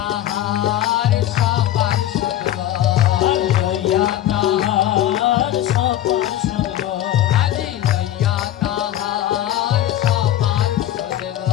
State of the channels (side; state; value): right; quieter; 12.7 dB